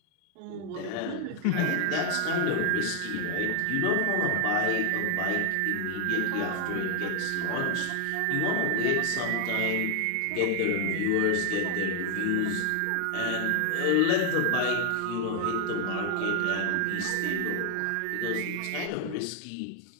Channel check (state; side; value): different; both; correlation 0.00